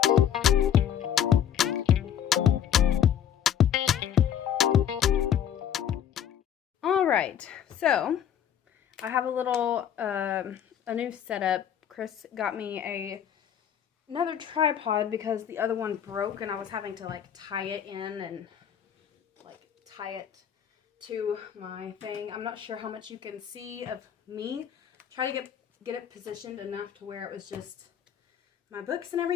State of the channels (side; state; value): right; quieter; 9.3 dB